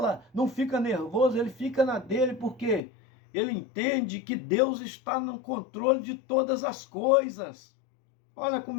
não fica nervoso, ele fica na dele, porque ele entende que Deus está no controle de todas as coisas. Olha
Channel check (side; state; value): right; drops out; at 2.8 s